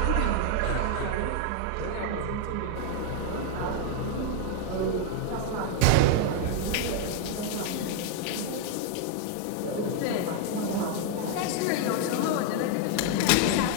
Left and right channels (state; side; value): different; both; correlation 0.00